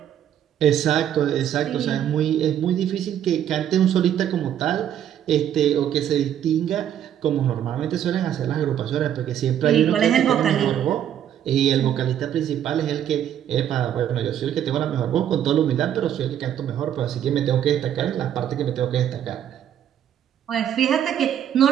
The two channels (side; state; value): left; quieter; 10.2 dB